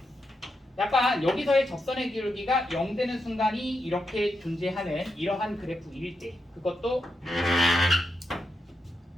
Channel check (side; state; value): both; normal; correlation 0.85